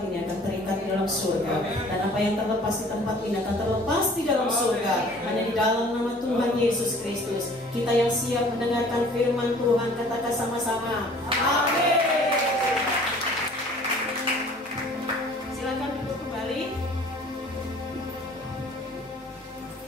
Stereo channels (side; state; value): both; normal; correlation 0.51